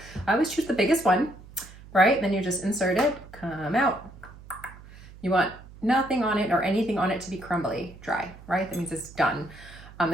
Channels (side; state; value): right; noise; hum, 19 dB below the sound